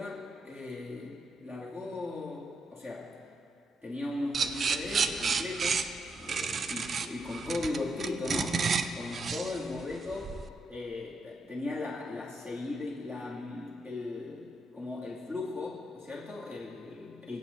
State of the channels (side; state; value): both; normal; correlation 0.80